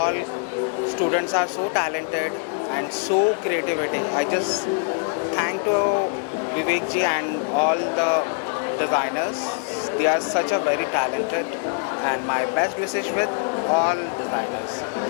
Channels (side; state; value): right; quieter; 39.6 dB